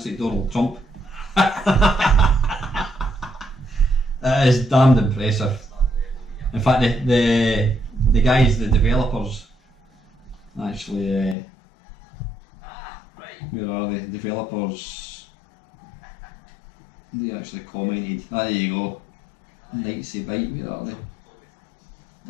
like Donald Trump. That is damned impressive. In fact, the guys, the developers, actually, where are they? Developers, they actually commented. There you go. Nightsy Bite, where are they?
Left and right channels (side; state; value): right; drops out; at 11.4 s